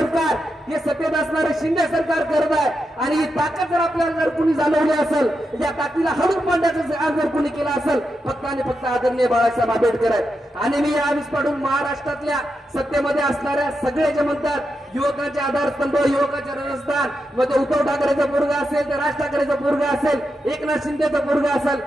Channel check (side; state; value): both; normal; correlation 0.86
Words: हे सत्तेत असणारे शिंदे सरकार करत आहे आणि ही ताकद जर आपल्याला जर कुणी जाणवली असेल या ताकदीला हडून पाडण्याचं जर कुणी केलं असेल फक्त आणि फक्त आदरणीय बाळासाहेब आंबेडकर आहेत। आणि मी यावेळेस पाडून महाराष्ट्रातल्या सत्तेमध्ये असणाऱ्या सगळे जे म्हणतात युवकाचे आधारस्तंभ युवकाचे राजस्थान मध्ये उद्धव ठाकरेचं पोरगा असेल ते राज ठाकरेचं पोरगा असेल एकनाथ शिंदेचं पोरगा असेल